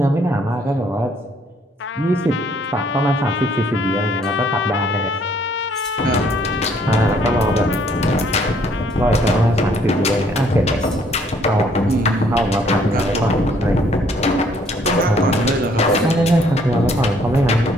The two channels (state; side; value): normal; both; correlation 0.64